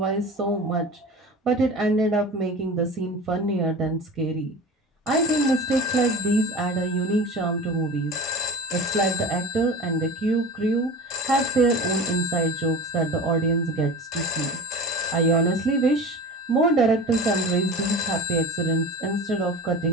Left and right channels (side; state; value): both; normal; correlation 0.34